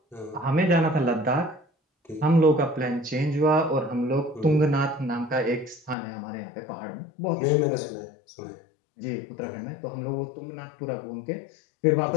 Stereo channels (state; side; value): drops out; right; at 6.0 s